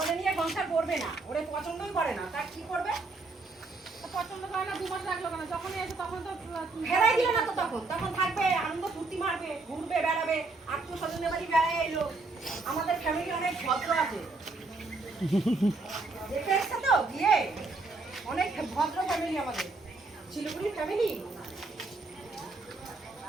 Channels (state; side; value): quieter; left; 3.5 dB